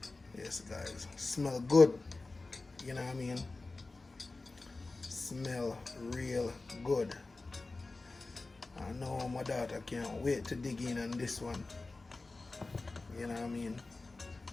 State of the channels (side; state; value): right; quieter; 3.4 dB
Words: Yes, guys. Smell good. You know what I mean? Smell real good. I know my daughter can't wait to dig in on this one. You know what I mean?